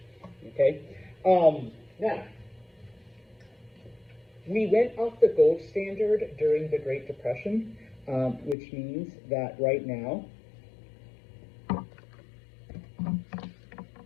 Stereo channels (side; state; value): right; drops out; at 8.6 s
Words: Okay. Now, we went off the gold standard during the Great Depression, which means that right now,